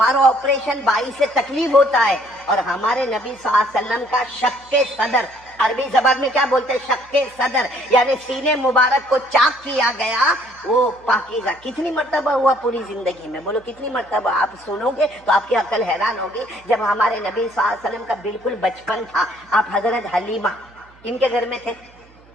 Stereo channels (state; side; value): noise; right; hum, 28 dB below the sound